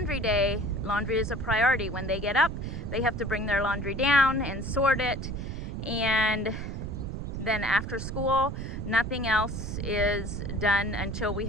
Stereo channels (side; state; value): right; noise; rumble, 5 dB below the sound